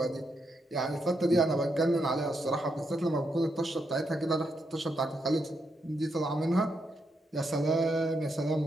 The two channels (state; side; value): normal; both; correlation 0.81